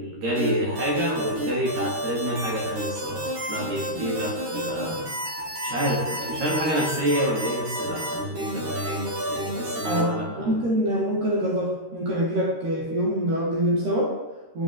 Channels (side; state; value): left; late; 13 ms